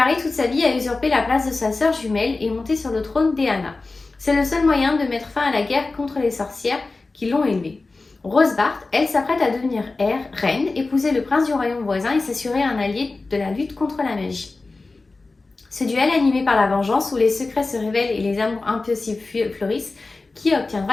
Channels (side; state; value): right; quieter; 3.6 dB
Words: toute sa vie à usurper la place de sa sœur jumelle et monter sur le trône d'Eanna. C'est le seul moyen de mettre fin à la guerre contre les sorcières qui l'ont élevée. Rosebart, elle, s'apprête à devenir reine, épouser le prince du royaume voisin et s'assurer un allié de la lutte contre la magie. Ce duel animé par la vengeance, où les secrets se révèlent et les amours impossibles fleurissent, qui